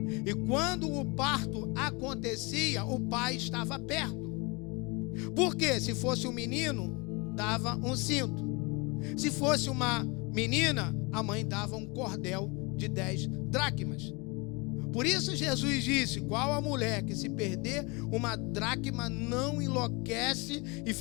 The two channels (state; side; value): quieter; right; 28.2 dB